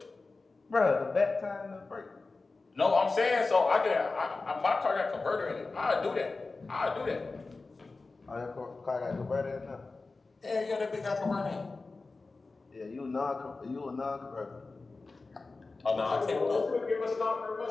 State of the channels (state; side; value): quieter; right; 3.7 dB